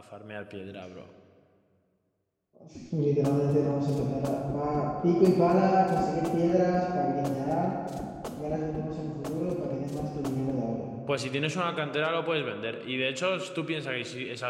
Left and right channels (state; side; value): identical; both; correlation 1.00